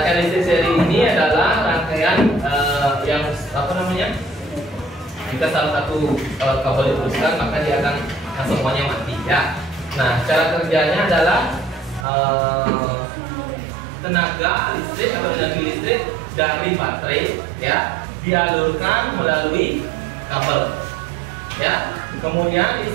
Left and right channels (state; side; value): drops out; left; at 12.1 s